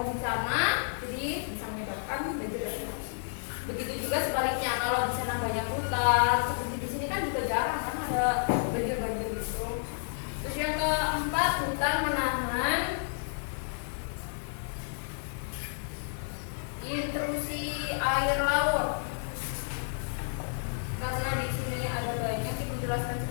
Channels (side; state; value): right; silent; 57 dB below the other